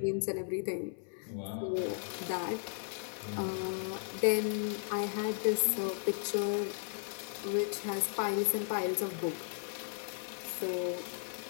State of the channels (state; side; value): silent; right; 54 dB below the other